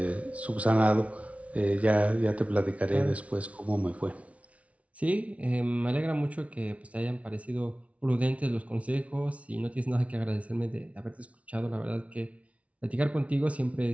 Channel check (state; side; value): late; left; 0.065 ms